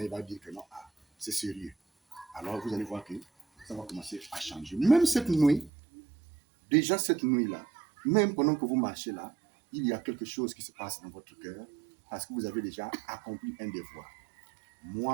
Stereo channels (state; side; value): drops out; left; at 5.7 s